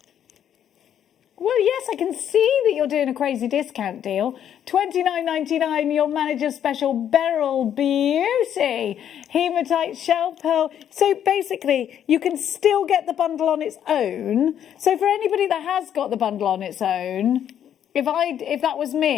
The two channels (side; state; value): right; quieter; 9.7 dB